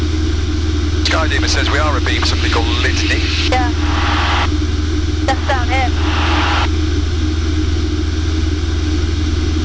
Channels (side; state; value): both; identical; correlation 1.00